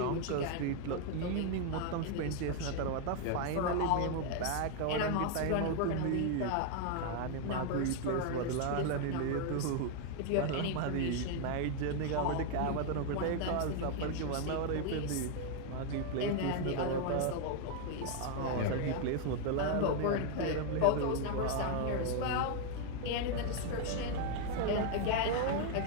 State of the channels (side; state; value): both; different; correlation 0.00